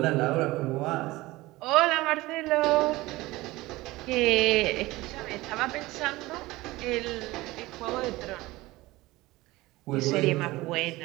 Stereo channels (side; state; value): left; quieter; 19.5 dB